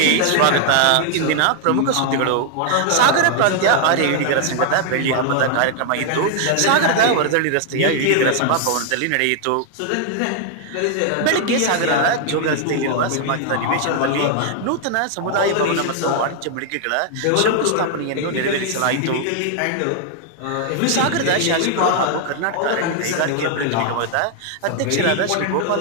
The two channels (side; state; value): both; different; correlation 0.00